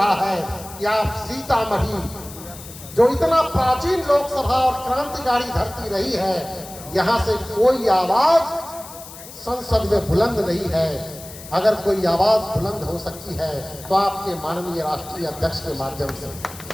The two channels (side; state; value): left; noise; hiss, 16 dB below the sound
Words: है कि आप सीतामढ़ी, जो इतना प्राचीन लोकसभा और क्रांतिकारी धरती रही है, यहां से कोई आवाज संसद में बुलंद नहीं है। अगर कोई आवाज बुलंद हो सकती है तो आपके माननीय राष्ट्रीय अध्यक्ष के माध्यम से,